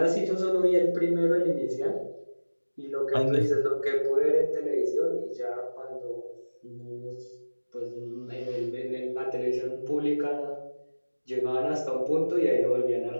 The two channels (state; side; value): inverted; both; correlation -1.00